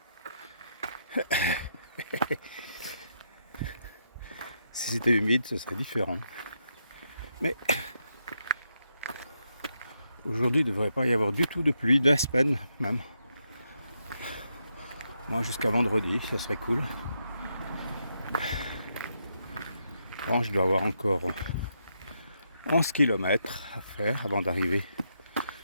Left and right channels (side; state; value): both; inverted; correlation -0.80